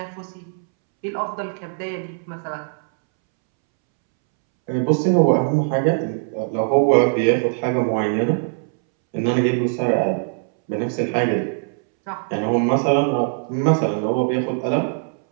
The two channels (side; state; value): left; silent; 65 dB below the other